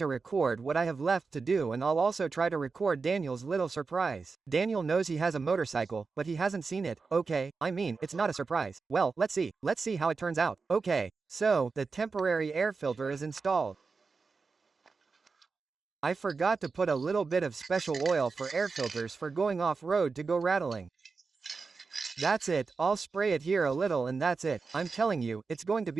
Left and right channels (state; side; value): quieter; left; 4.6 dB